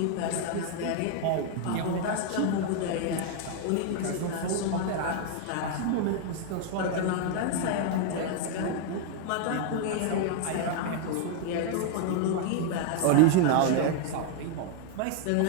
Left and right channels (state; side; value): different; both; correlation 0.00